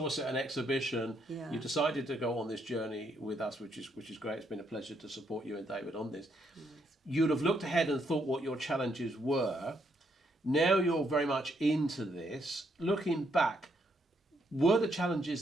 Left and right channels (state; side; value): normal; both; correlation 0.74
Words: us at an exhibition, you decided to go on this journey with us, which is great. It's been a pleasure to support you and David on this. Nice. You'd have looked ahead and thought what your challenges were. Now you're very much into this. Looking back, were the